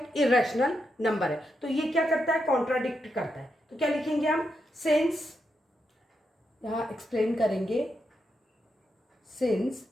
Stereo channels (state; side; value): normal; both; correlation 0.83